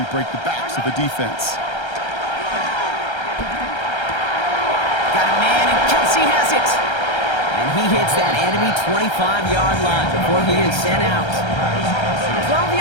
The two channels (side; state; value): right; late; 1.3 ms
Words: break the backs of the defense. Got a man, and Kelsey has it. And he hits that enemy 25-yard line before he is sent out. 12